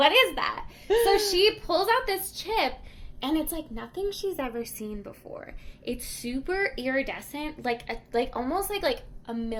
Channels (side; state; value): both; identical; correlation 1.00